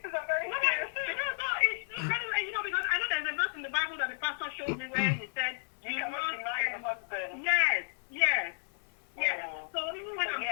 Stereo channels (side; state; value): right; silent; digital silence